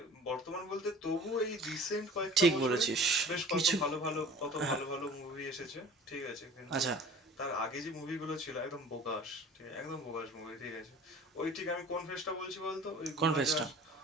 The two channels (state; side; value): normal; both; correlation 0.44